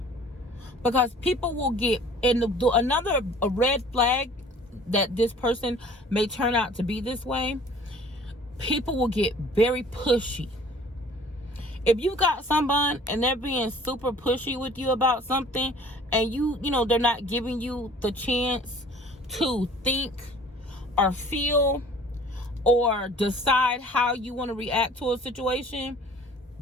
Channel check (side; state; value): both; normal; correlation 0.50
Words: Because people will get, and a red flag that this person may turn out to be this way, people will get very pushy. If you got someone and they're being super pushy with you about something, and you know, they're not giving you the chance to think or feel or decide how you want to react to a situation,